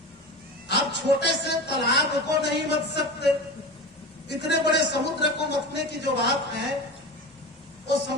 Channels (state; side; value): normal; both; correlation 0.28